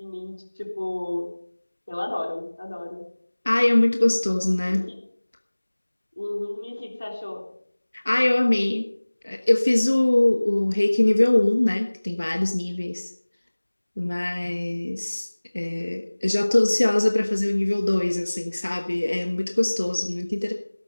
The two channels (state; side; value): inverted; both; correlation -1.00